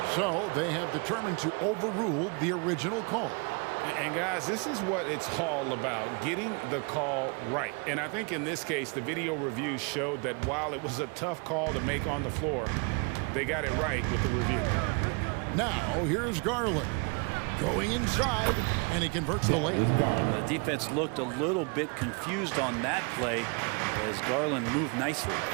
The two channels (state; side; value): quieter; left; 32.5 dB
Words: So they have determined to overrule the original call. And guys, this is what it's all about, getting the call right. And I think in this case, the video review showed that while it was a tough call to make on the floor, they got it right with the review. Now, here's Garland going inside, and he converts the layup. The defense looked a little bit confused on that play as Garland moved nicely.